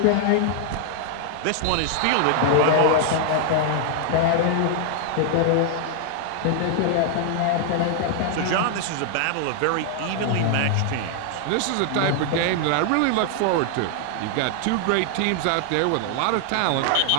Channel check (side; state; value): both; different; correlation 0.00